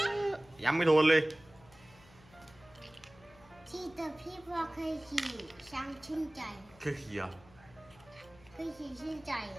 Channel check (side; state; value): left; noise; hum, 25 dB below the sound